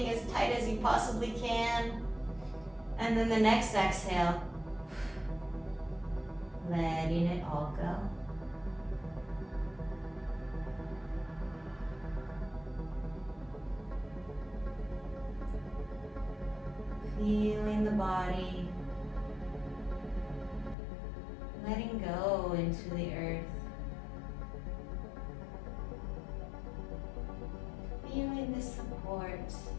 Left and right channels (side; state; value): right; drops out; at 20.8 s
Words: as tight as you possibly can. And then the next exhale, letting it all go. Feeling the body, letting go into the earth. Feeling this support,